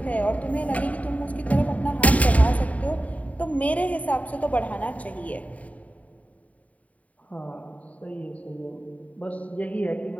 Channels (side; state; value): right; late; 0.069 ms